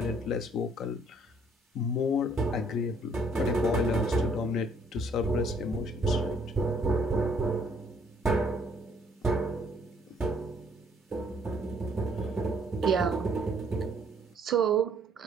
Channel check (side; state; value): both; normal; correlation 0.63